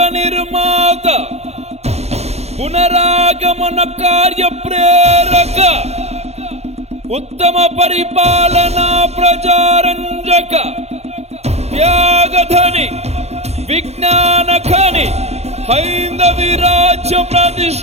నిర్మాత పునరాగమన కార్య ప్రేరక ఉత్తమ పరిపాలనా ప్రజారంజక త్యాగధని విజ్ఞాన ఖని హైందవి రాజ్య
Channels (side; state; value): left; late; 0.31 ms